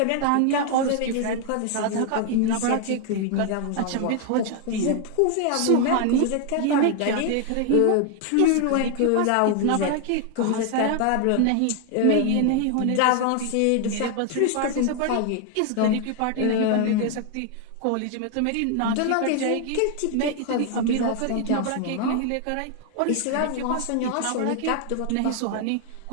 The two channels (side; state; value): both; different; correlation 0.00